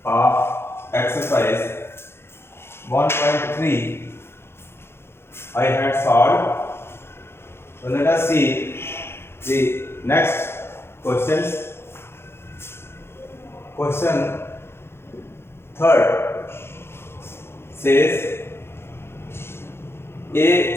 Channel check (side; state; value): right; late; 0.12 ms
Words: of exercise 1.3 I had solved. So let us see the next questions. Question third says